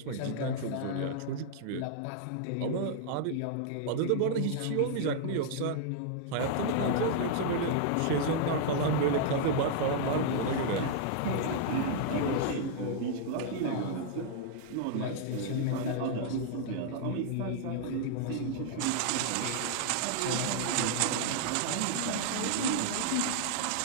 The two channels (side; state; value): both; different; correlation -0.01